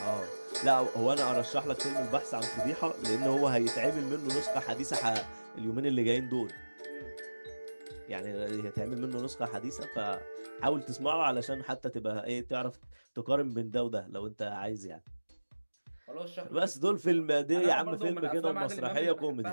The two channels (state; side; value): inverted; both; correlation -1.00